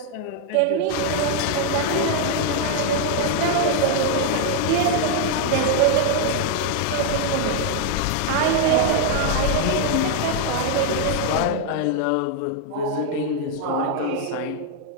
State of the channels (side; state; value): both; different; correlation 0.00